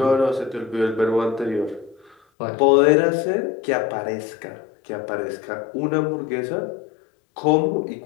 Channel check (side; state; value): right; drops out; at 2.1 s